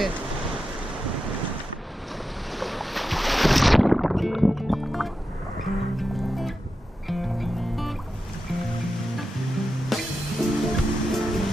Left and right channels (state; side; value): normal; both; correlation 0.90